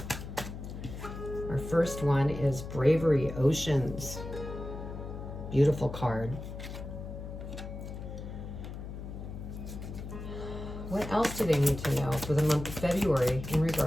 Our first one is Bravery Oceans. Beautiful card. What else do they need to know for the month of February in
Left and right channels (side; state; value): left; noise; hum, 9 dB below the sound